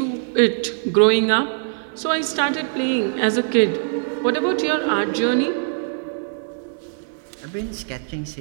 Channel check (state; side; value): silent; left; digital silence